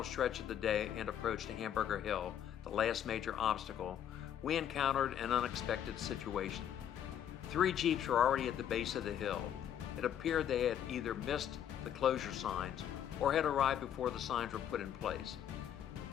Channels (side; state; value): right; quieter; 9.8 dB